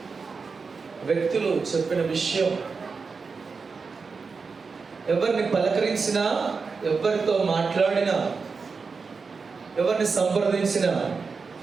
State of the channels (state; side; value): quieter; left; 4.9 dB